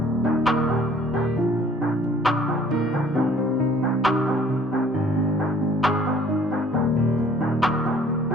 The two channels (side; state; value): both; normal; correlation 0.56